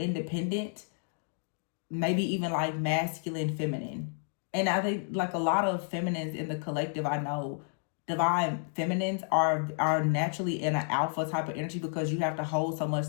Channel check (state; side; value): silent; right; 57 dB below the other